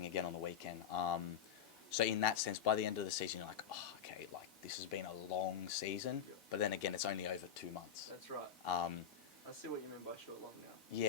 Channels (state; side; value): quieter; right; 8.3 dB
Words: again on the weekend. So in that sense, by the end of the season, you're like, oh, okay, like this has been a long season. Yeah. But then again, it's only over 2 months. That's right. I see what you mean by short long now.